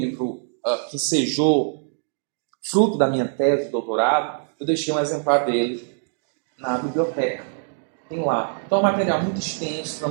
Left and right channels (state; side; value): silent; left; digital silence